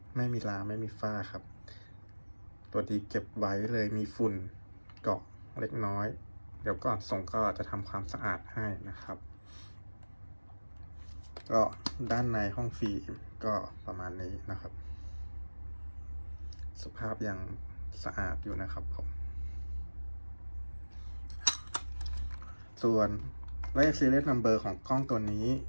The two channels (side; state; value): both; inverted; correlation -1.00